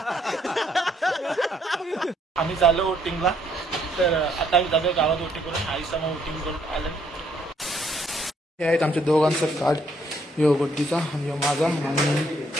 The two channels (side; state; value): both; normal; correlation 0.69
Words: आम्ही चाललो वोटिंगला. तर आता आम्ही जातो गावात वोटिंग करून, आईसा मग वोटिंग करून आलं. हे आहेत आमच्या दोघांचं कार्ड, यो गोड्डीचा आणि यो माझा, आणि